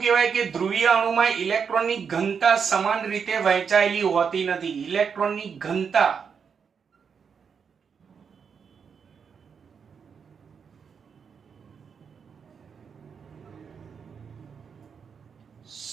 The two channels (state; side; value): quieter; left; 6.4 dB